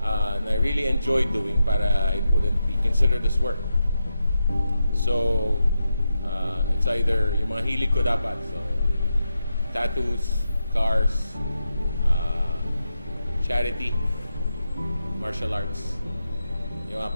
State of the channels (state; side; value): inverted; both; correlation -0.87